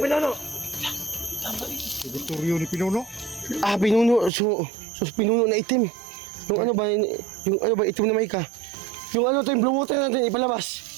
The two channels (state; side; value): drops out; left; at 4.3 s